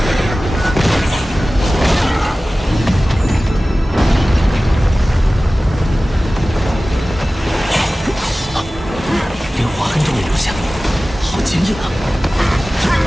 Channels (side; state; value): both; normal; correlation 0.97